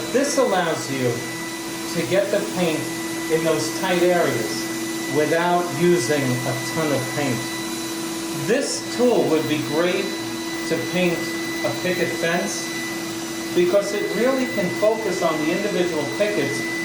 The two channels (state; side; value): identical; both; correlation 1.00